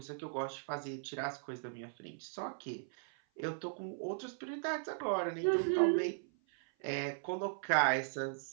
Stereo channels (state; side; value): silent; left; 53 dB below the other